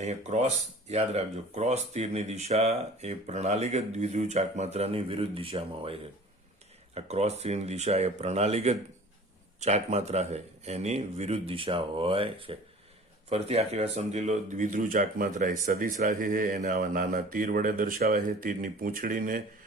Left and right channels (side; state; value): both; normal; correlation 0.45